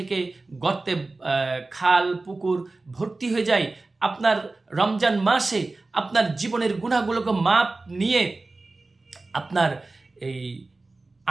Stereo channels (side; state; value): left; quieter; 3.3 dB